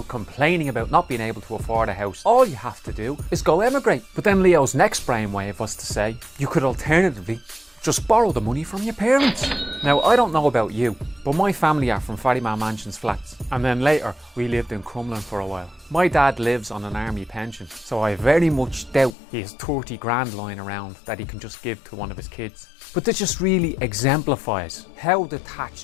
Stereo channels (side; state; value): right; drops out; at 19.1 s